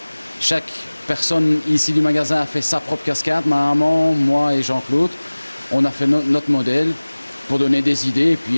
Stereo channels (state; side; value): inverted; both; correlation -1.00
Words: Chaque personne ici du magasin a fait sa propre cascade, ma maman, moi et Jean-Claude. On a fait notre modèle pour donner des idées et puis